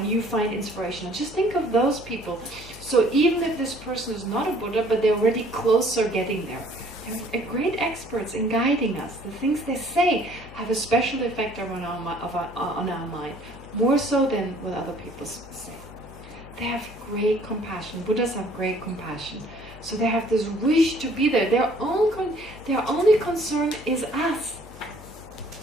you find inspirational, just think of those people. So even if this person is not a Buddha, but they're already closer getting there, they're great experts in guiding us. The things they say have a special effect on our mind, more so than what other people say. They have great compassion. Buddhas have great compassion. So they have this wish to be there. Their only concern is us.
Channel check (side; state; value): both; normal; correlation 0.57